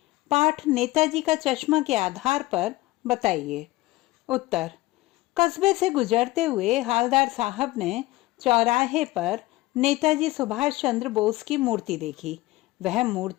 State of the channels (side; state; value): right; quieter; 19.1 dB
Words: पाठ नेताजी का चश्मा के आधार पर बताइए। उत्तर, कस्बे से गुजरते हुए हवलदार साहब ने चौराहे पर नेताजी सुभाष चंद्र बोस की मूर्ति देखी। वह